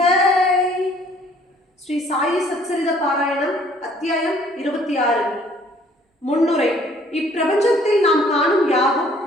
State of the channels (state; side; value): normal; both; correlation 0.59